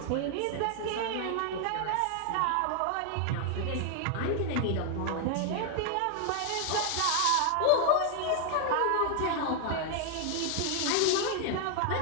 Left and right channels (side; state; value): both; different; correlation 0.00